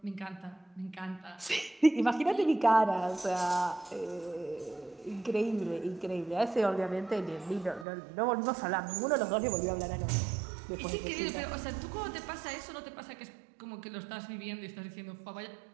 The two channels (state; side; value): drops out; left; at 7.9 s